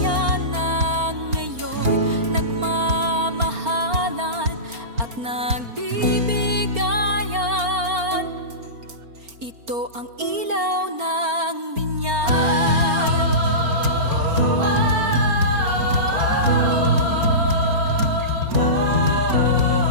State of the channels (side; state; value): left; late; 4.4 ms